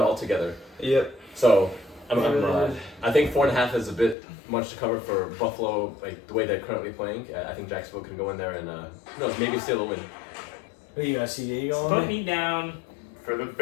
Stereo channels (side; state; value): right; drops out; at 4.2 s